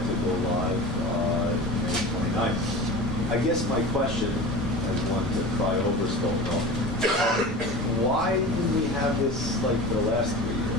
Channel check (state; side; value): normal; both; correlation 0.32